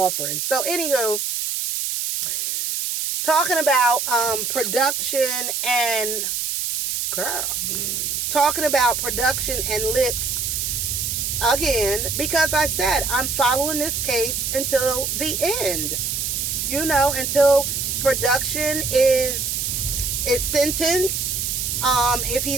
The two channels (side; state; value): right; noise; hiss, 1 dB below the sound